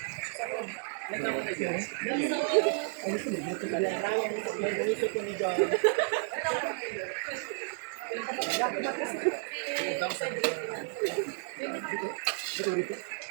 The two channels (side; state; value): left; silent; 56 dB below the other